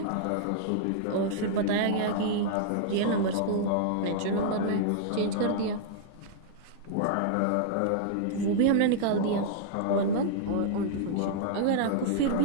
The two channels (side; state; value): both; different; correlation -0.02